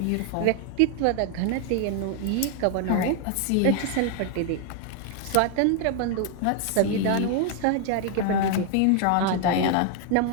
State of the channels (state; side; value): different; both; correlation 0.00